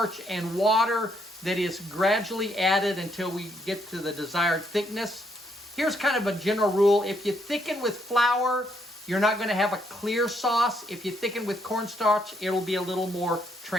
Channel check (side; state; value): both; normal; correlation 0.73